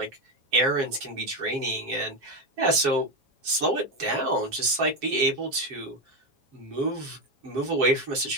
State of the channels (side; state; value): left; late; 7.3 ms